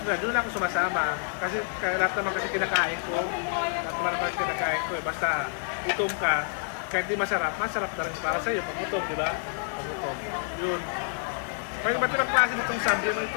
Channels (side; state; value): right; silent; 57 dB below the other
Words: na, doon ako sumasama. Kasi lahat naman kasi kinakain ko. Lahat naman kasi kinakain ko. Basta gutom ka, kahit di masarap na rin para sa'yo. Pag gutom, di ba? Pag gutom. Yun. May iba't ibang klase nitong sample. May